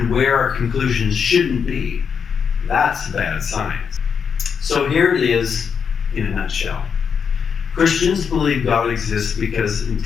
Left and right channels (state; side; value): quieter; right; 6.6 dB